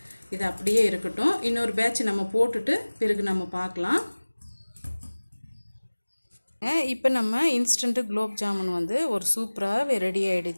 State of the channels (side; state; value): both; inverted; correlation -1.00